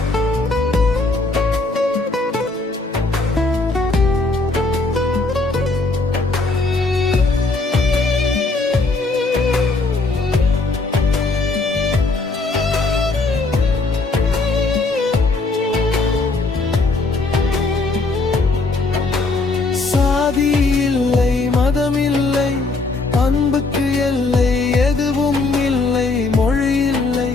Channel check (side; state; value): right; quieter; 3.5 dB